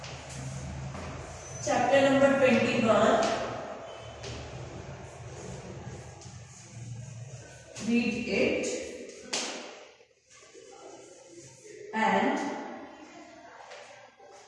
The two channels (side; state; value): both; identical; correlation 1.00